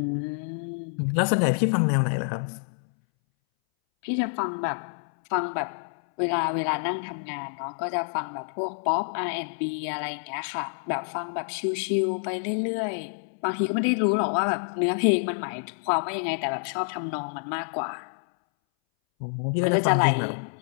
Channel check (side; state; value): right; silent; 60 dB below the other